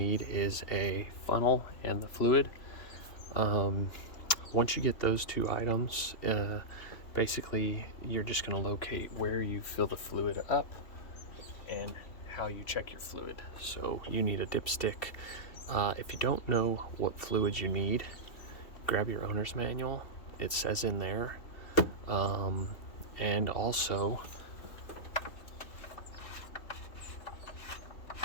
is a funnel and the fluid. Once you get those two items, basically you're just going to locate where you fill the fluid up and how you check your fluid. So you need a dipstick. If you don't know what fluid you need, grab your owner's manual. It says in there. And also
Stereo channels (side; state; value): right; late; 2.7 ms